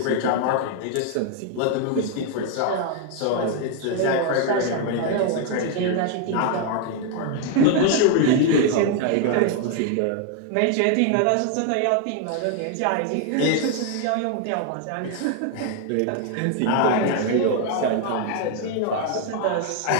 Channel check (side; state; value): both; different; correlation 0.00